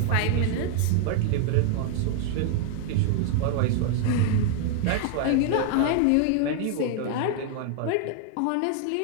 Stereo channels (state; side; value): different; both; correlation 0.00